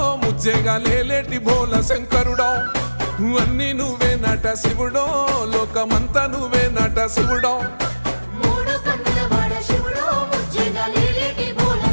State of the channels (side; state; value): both; inverted; correlation -1.00